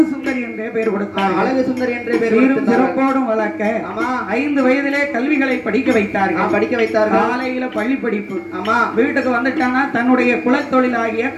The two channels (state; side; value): identical; both; correlation 1.00